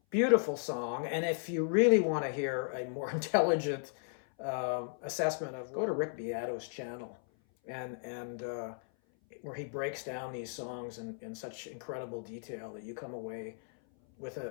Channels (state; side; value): silent; right; 54 dB below the other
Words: beautiful song. And if you really want to hear a more intelligent assessment of, go to Rick Beato's channel, and where he breaks down these songs in such incredible detail that you come away with